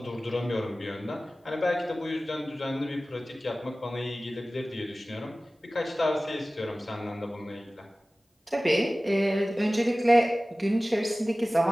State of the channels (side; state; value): both; normal; correlation 0.97